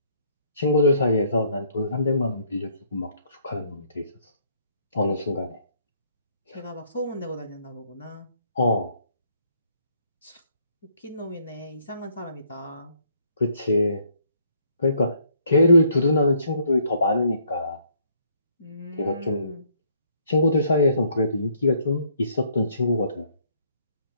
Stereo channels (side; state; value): both; inverted; correlation -0.66